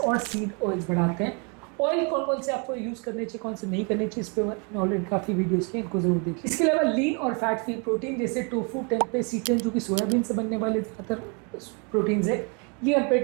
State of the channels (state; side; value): quieter; left; 34.6 dB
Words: और सीड ऑयल्स बढ़ाते हैं। ऑयल कौन कौन से आपको यूज़ करने चाहिए, कौन से नहीं करने चाहिए, इस पर मैंने ऑलरेडी काफ़ी वीडियोस किए, इनको जरूर देखिए। इसके अलावा लीन और फैट फ्री प्रोटीन जैसे टोफू, टेम्पे, सीटन, जो कि सोयाबीन से बनने वाले ज़्यादातर प्रोटीन्स है, ये